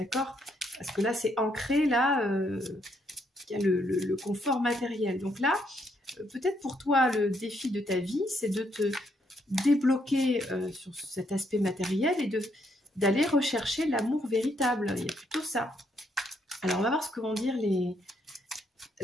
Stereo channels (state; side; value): normal; both; correlation 0.74